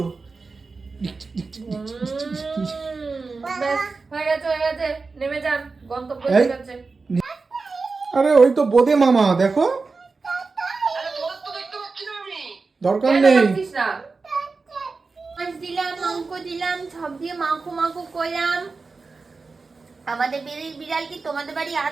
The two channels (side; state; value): left; quieter; 4.2 dB